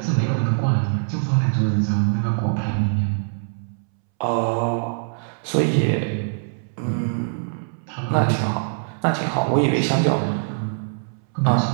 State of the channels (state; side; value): silent; left; 64 dB below the other